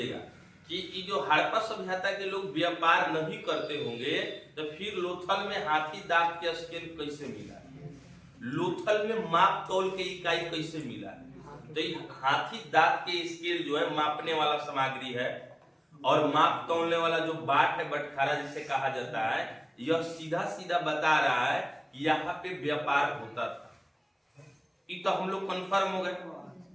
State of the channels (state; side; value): identical; both; correlation 1.00